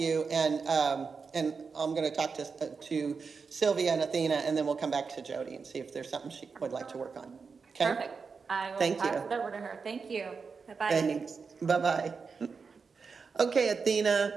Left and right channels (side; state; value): left; quieter; 5.2 dB